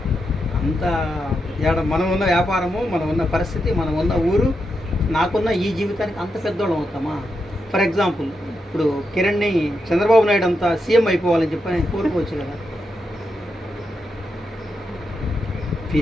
అంత మనం ఉన్న వ్యాపారము, మనం ఉన్న పరిస్థితి, మనం ఉన్న ఊరు, నాకున్న ఈ జీవితానికి అంత పెద్దోళ్ళం అవుతామా? ఫర్ ఎగ్జాంపుల్ ఇప్పుడు కిరణ్ని చంద్రబాబు నాయుడు అంతా సీఎం అయిపోవాలని చెప్పి నేను కోరుకోవచ్చు కదా.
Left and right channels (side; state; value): both; normal; correlation 0.85